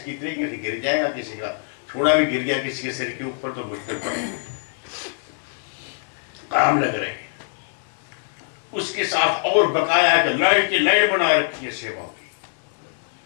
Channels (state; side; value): silent; right; digital silence